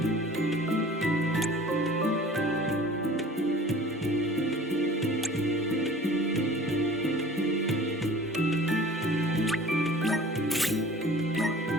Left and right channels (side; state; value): both; normal; correlation 0.45